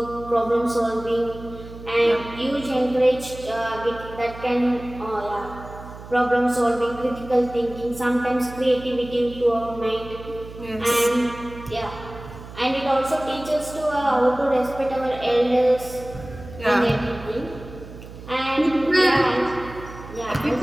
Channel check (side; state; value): right; noise; hum, 15 dB below the sound